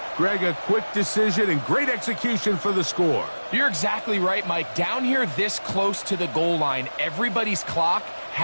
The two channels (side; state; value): both; inverted; correlation -1.00